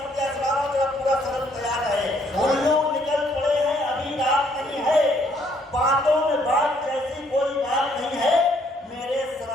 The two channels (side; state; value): both; normal; correlation 0.67